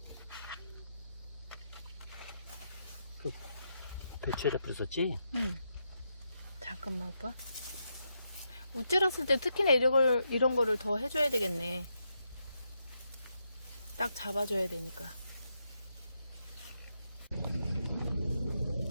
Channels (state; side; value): inverted; both; correlation -0.82